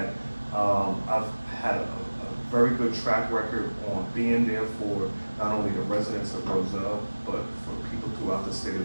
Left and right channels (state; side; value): inverted; both; correlation -1.00